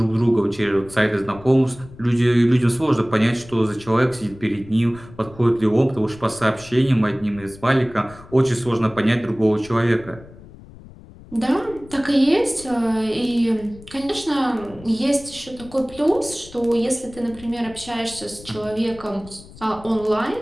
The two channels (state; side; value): noise; left; rumble, 20 dB below the sound